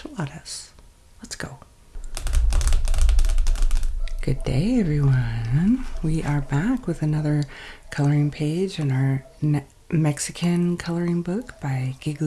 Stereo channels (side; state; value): both; identical; correlation 1.00